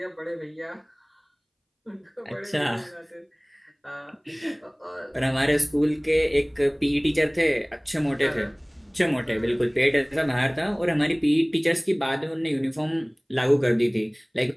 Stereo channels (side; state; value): both; identical; correlation 1.00